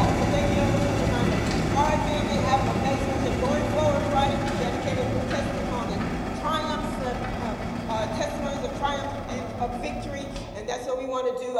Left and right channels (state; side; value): identical; both; correlation 1.00